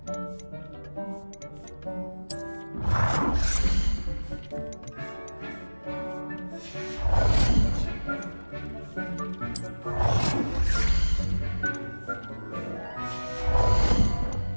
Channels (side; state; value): both; inverted; correlation -1.00